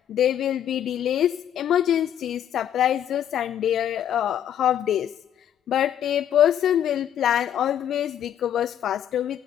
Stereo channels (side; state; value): right; quieter; 10.2 dB